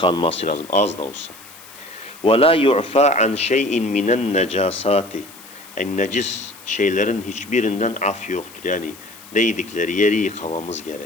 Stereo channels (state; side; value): noise; left; hiss, 20 dB below the sound